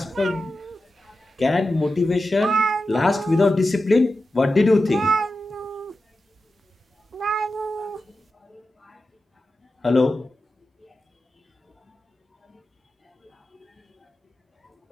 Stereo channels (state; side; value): normal; both; correlation 0.92